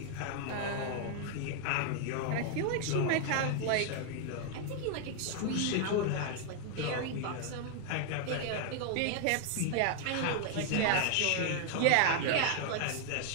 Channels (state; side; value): different; both; correlation 0.00